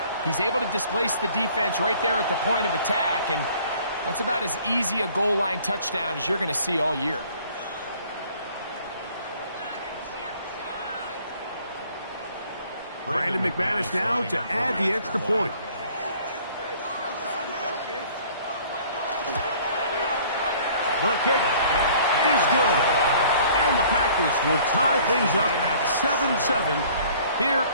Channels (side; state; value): both; inverted; correlation -0.54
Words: He's able to displace the defense right there at the point of attack, and that's about as easy a goal line touchdown as you're going to see all year. Brandon McManus now to add the extra point. The kick is good. And the Packers will tie things up at 7-7 here